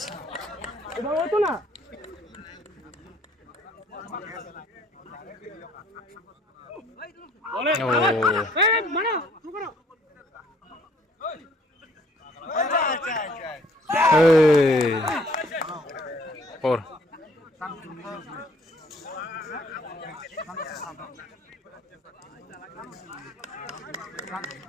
এটা হতো না বলে এই মানা শুরু করো Hey. 4.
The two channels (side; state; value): both; normal; correlation 0.60